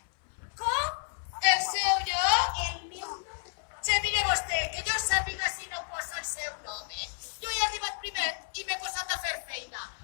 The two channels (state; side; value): silent; right; 57 dB below the other